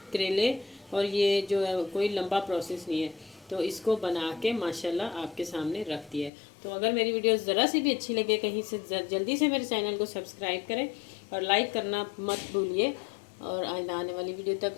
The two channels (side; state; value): right; drops out; at 6.3 s